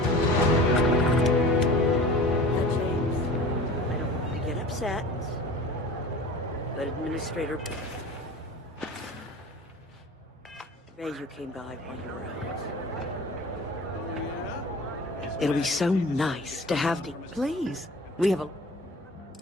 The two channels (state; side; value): normal; both; correlation 0.40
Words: James, I don't want to get upset, but Administrator... you came by while you were out. Oh, yeah? It'll be so nice to have the... Please, we have a...